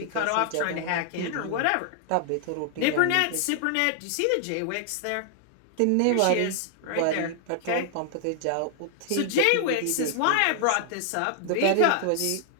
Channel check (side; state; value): both; different; correlation 0.00